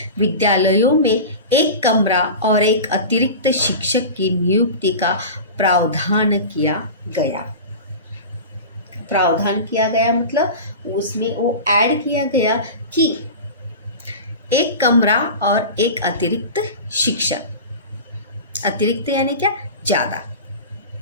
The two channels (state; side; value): inverted; both; correlation -0.30